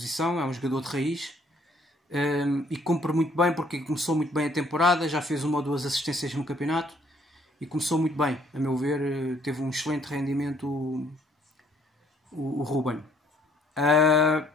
é um jogador de raiz, e cumpre muito bem, porque começou muito bem a temporada, já fez 1 ou 2 assistências no campeonato e começou muito bem, a meu ver. Teve um excelente rendimento o Ruben.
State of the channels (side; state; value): both; normal; correlation 0.64